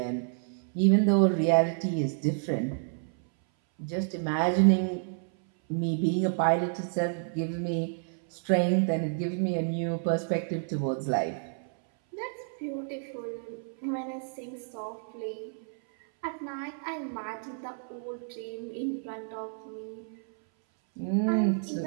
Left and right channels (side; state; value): left; silent; 58 dB below the other